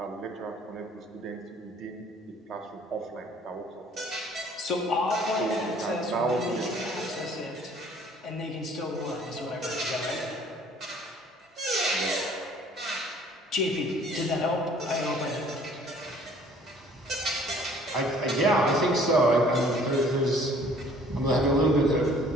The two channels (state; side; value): normal; both; correlation 0.55